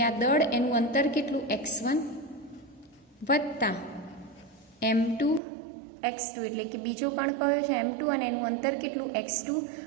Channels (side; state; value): left; drops out; at 5.4 s